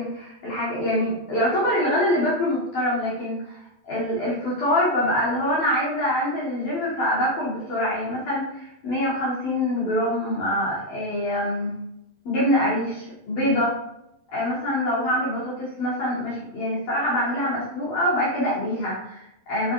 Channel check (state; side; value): late; right; 12 ms